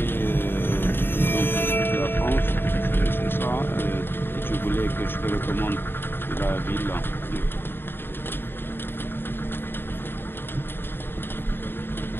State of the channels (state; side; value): late; right; 0.10 ms